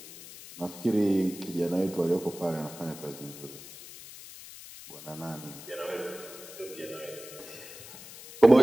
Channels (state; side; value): noise; left; hiss, 15 dB below the sound